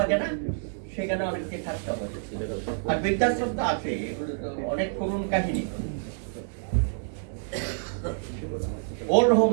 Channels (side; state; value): left; silent; digital silence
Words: না, সেখানে অনেককে থাকতে হয়। আর বৃদ্ধাশ্রম তো আছে, এগুলো তো অনেক করুণ কাহিনী। ওল্ড হোম